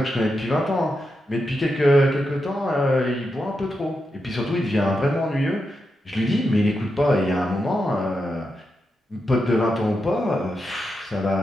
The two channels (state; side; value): normal; both; correlation 0.87